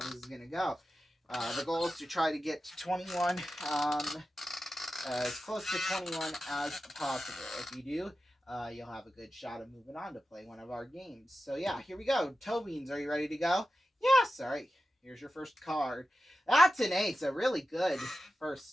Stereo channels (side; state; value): both; normal; correlation 0.93